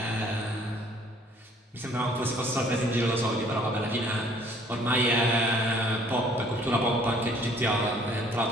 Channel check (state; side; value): normal; both; correlation 0.58